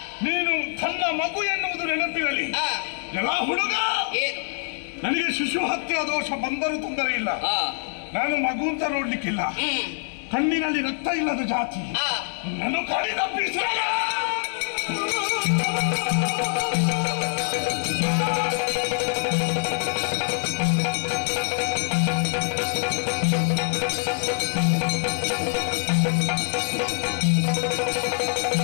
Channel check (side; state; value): right; silent; 62 dB below the other